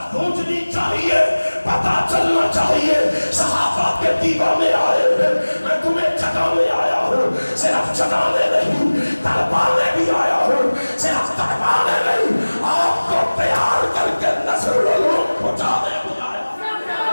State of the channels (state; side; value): inverted; both; correlation -1.00